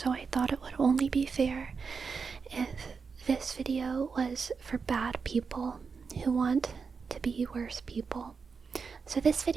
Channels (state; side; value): quieter; left; 5.3 dB